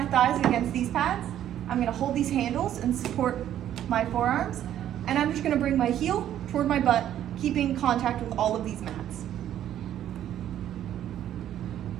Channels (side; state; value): left; quieter; 11.2 dB